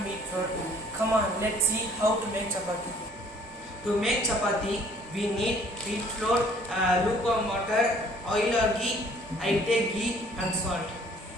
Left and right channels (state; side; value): normal; both; correlation 0.57